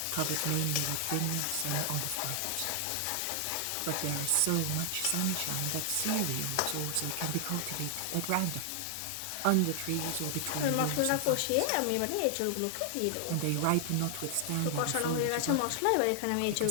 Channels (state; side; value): different; both; correlation 0.00